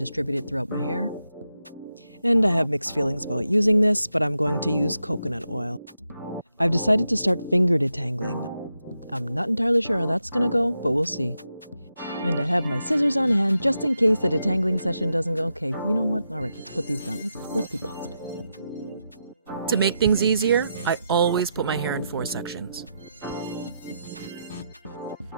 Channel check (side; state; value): both; inverted; correlation -0.85